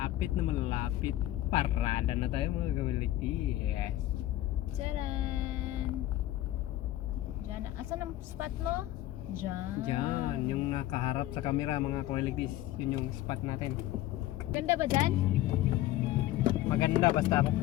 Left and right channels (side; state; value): right; quieter; 14.7 dB